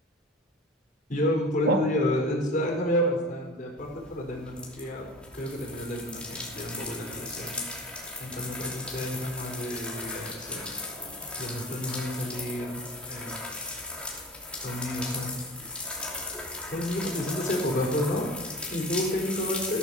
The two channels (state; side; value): normal; both; correlation 0.38